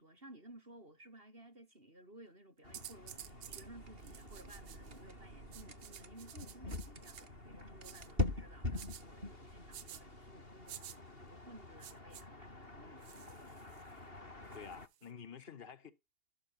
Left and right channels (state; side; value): late; left; 2.8 ms